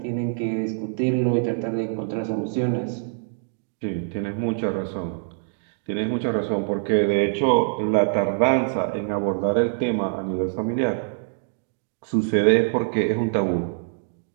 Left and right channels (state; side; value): silent; left; digital silence